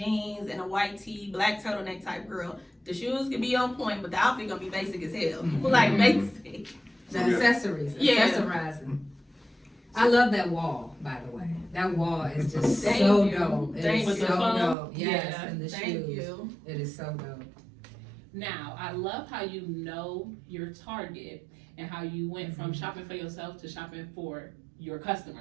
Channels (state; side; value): drops out; left; at 14.8 s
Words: and a white tee, black turtleneck type girl. The shoes can be on point, but the outfit gonna be basic as hell. Like, basic. The accessories, accessorizing. I love that wall, by the way. That wall is just so dope. It is so dope. Yes, and the shoes. It is so dope. Now, I love how you know your target and how you went from shopping for yourself to shopping for your